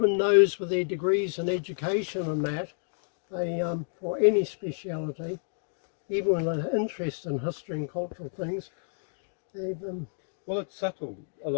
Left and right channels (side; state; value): right; silent; digital silence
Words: those with their degrees in education and that, they, for any speciality, even with an interest in history and cultural things, they've... Well, it's subtle, a